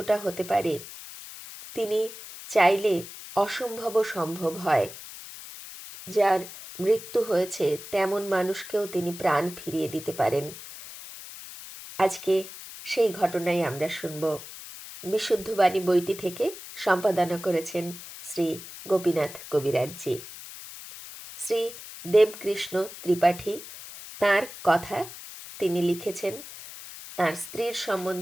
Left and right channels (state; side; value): noise; left; hiss, 13 dB below the sound